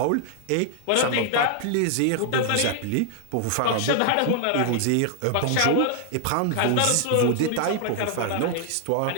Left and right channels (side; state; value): both; different; correlation 0.00